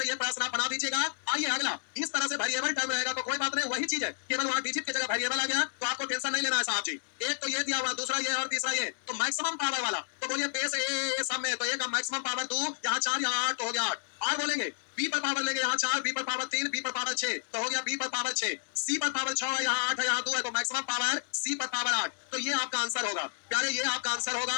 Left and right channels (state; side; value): silent; right; digital silence